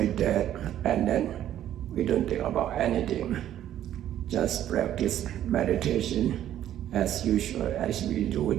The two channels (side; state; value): left; quieter; 11.6 dB